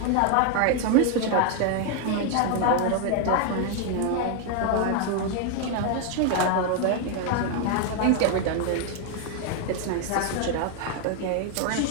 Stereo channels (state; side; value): different; both; correlation 0.01